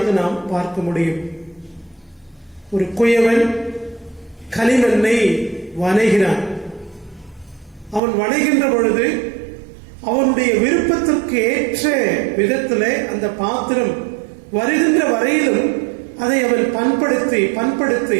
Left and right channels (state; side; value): drops out; left; at 8.0 s